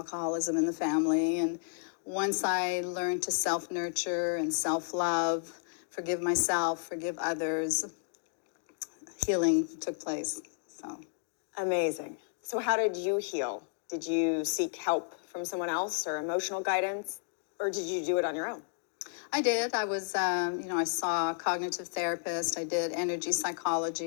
in the family. And once I learned to self-nurture and self-love, forgive myself, forgive others, healing took place. So Amazing. So how did you heal? Did you seek help from someone else or emotional guidance, or did you do it on your own? I did. I was, I saw a cognitive therapist. I did energy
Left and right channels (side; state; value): right; silent; digital silence